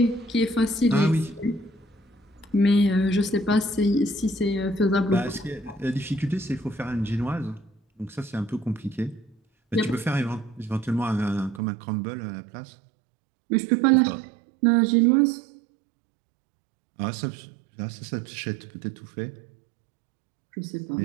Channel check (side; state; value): left; drops out; at 11.6 s